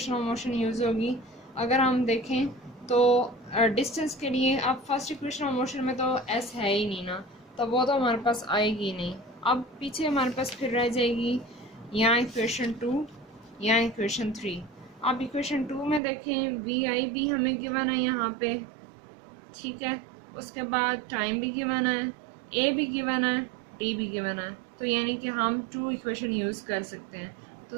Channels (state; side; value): drops out; left; at 16.0 s